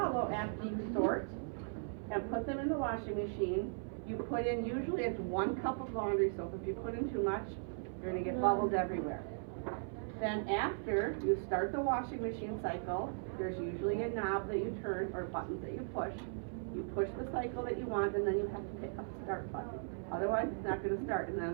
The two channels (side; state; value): left; silent; 52 dB below the other